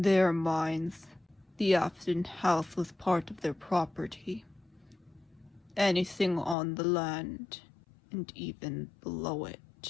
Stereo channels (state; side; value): drops out; right; at 6.6 s